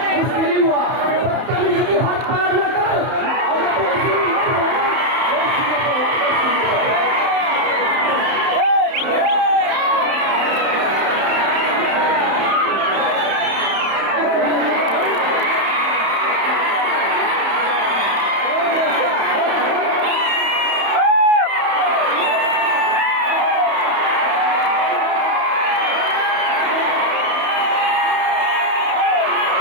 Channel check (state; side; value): late; left; 31 ms